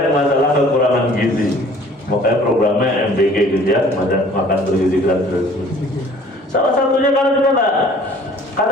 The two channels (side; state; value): both; normal; correlation 0.52